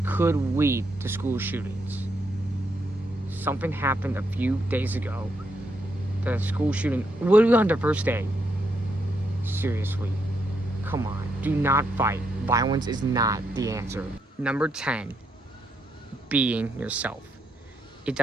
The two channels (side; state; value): both; normal; correlation 0.78